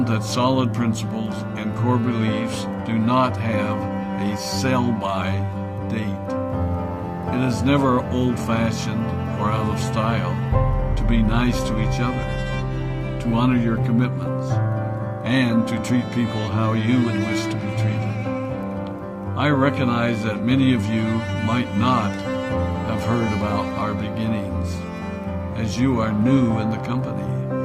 that solid principles and core beliefs do not have a sell-by date. It is never old-fashioned or out of style to be nice to each other, to honor your commitments, and to treat people how you would wish to be treated. I recognize that many of you might not have heard about our beginnings, as you are new in the company.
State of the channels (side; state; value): both; identical; correlation 1.00